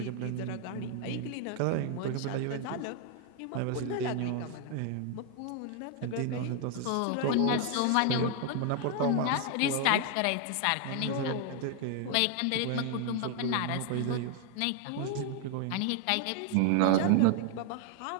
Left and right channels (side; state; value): both; different; correlation 0.00